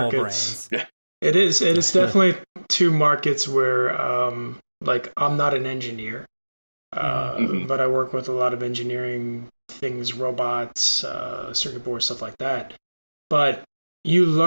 brains. It is definitely two markets where, like, I'm not an engineer, but I work with a lot of engineering things, robots, circuit boards, stuff like that. But you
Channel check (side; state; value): both; inverted; correlation -1.00